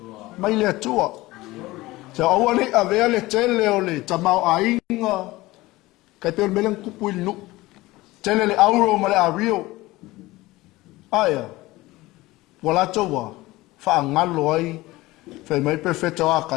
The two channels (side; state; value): right; quieter; 19.3 dB